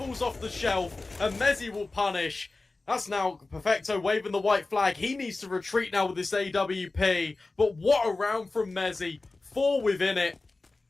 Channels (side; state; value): right; quieter; 3.4 dB